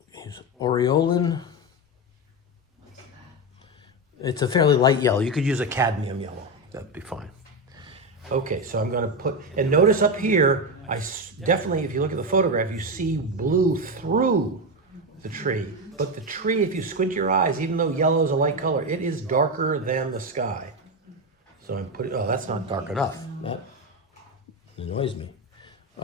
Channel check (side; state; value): both; normal; correlation 0.13